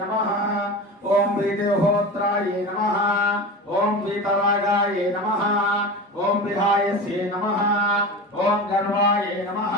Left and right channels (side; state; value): both; normal; correlation 0.29